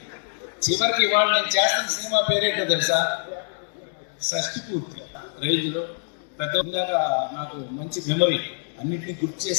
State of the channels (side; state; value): right; silent; digital silence